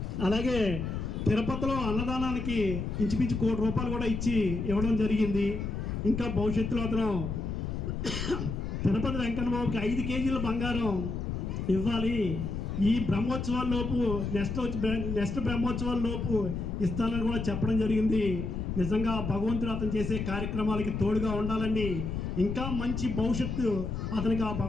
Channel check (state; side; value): noise; left; rumble, 4 dB below the sound